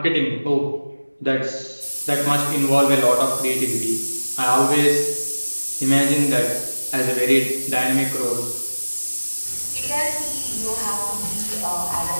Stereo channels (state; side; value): inverted; both; correlation -1.00